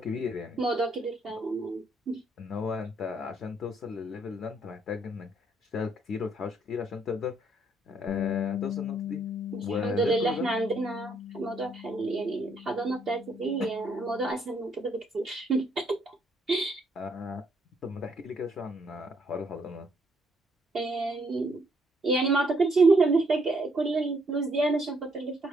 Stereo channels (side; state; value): both; normal; correlation 0.70